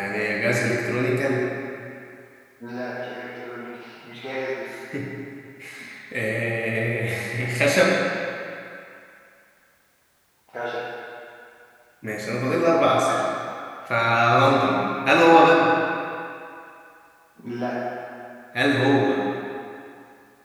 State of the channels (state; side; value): identical; both; correlation 1.00